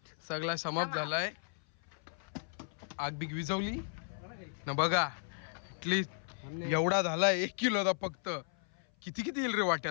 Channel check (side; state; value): right; silent; 54 dB below the other